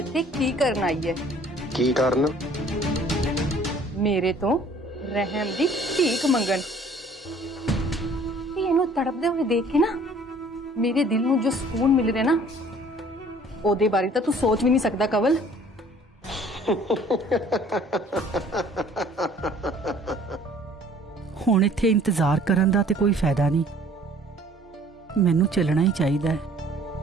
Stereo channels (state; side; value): normal; both; correlation 0.54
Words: ਕੀ ਕਰਨ ਆਈ ਹੈ। ਕੀ ਕਰਨ? ਮੇਰੇ ਤੋਂ ਰਹਿਮ ਦੀ ਭੀਖ ਮੰਗਣ। ਤੇ ਇਹਨੂੰ ਤੜਪਦੇ ਹੋਏ ਦੇਖ ਕੇ ਨਾ ਮੇਰੇ ਦਿਲ ਨੂੰ ਜੋ ਸਕੂਨ ਮਿਲ ਰਿਹਾ ਨਾ ਉਹਦੇ ਬਾਰੇ ਤਾਂ ਤੂੰ ਸੋਚ ਵੀ ਨਹੀਂ ਸਕਦਾ ਕਵਲ। ਹੁਣ ਇੱਥੇ ਇੰਤਜ਼ਾਰ ਕਰਨ ਦਾ ਤੇ ਕੋਈ ਫਾਇਦਾ ਨਹੀਂ, ਮੈਨੂੰ ਚੱਲਣਾ ਹੀ ਚਾਹੀਦਾ ਹੈ।